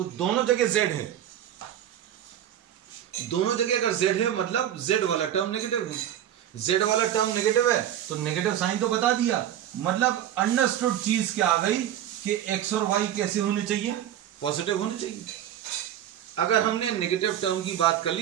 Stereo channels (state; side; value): quieter; left; 11.0 dB